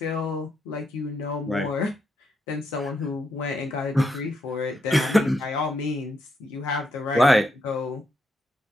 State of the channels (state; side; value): normal; both; correlation 0.79